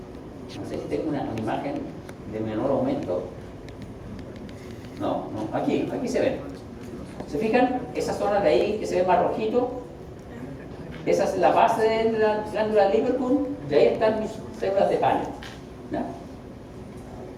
No sé si tengo una imagen de menor aumento. No, aquí se ven. ¿Se fijan? Esa zona de ahí que se ve más rojito, Esa es la base de la glándula de Lieberkühn, de ahí están mis células de Paneth. ¿Ya?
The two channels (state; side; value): identical; both; correlation 1.00